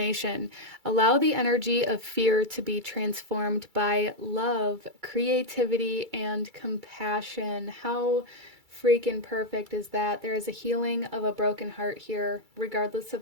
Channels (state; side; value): late; left; 2.3 ms